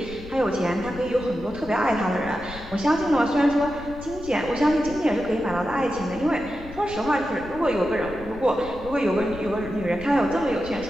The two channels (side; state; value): left; noise; rumble, 15 dB below the sound